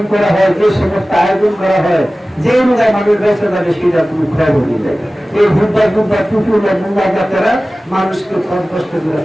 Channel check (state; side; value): normal; both; correlation 0.97